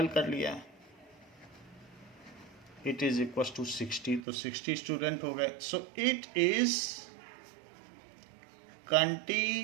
कर लिया, इट इज इक्वल टू 60, तो 60 स्टूडेंट हो गए। सो it is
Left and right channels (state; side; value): drops out; left; at 4.2 s